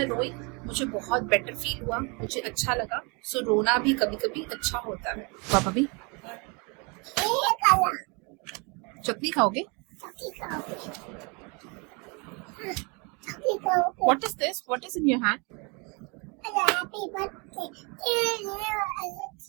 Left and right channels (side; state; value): left; quieter; 31.3 dB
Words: रोई मुझे बहुत बेटर फील हुआ, मुझे अच्छा लगा। सो रोना भी कभी कभी अच्छा होता है। पापा भी ये काला चटनी खाओगे? चक्की खाओगे चक्की खाओगे what is this? What is in your hand? Happy birthday